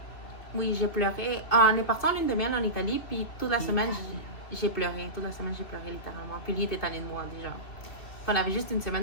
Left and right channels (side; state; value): right; late; 2.7 ms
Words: Oui, j'ai pleuré. On est parti en lune de miel en Italie, puis toute la semaine, j'ai pleuré. Toute la semaine, j'ai pleuré littéralement. Puis lui était tanné de moi déjà. On avait juste une